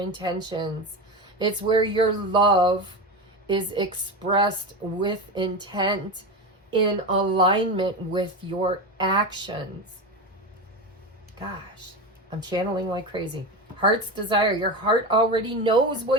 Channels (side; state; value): both; normal; correlation 0.21